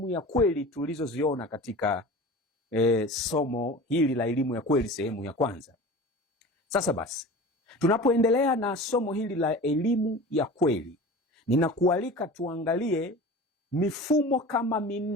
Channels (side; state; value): both; normal; correlation 0.36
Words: ya kweli tulizoziona katika somo hili la elimu ya kweli sehemu ya kwanza. Sasa basi, tunapoendelea na somo hili la elimu ya kweli, ninakualika tuangalie mifumo kama